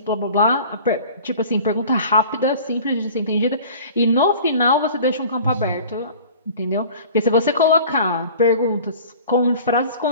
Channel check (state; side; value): inverted; both; correlation -0.44